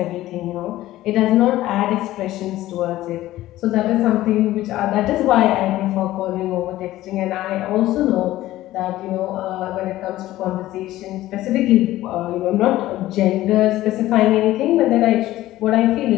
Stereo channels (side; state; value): right; quieter; 15.4 dB